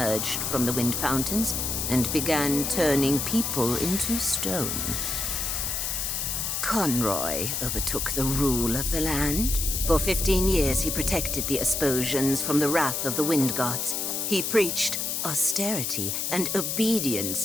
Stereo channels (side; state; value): left; noise; hiss, 1 dB below the sound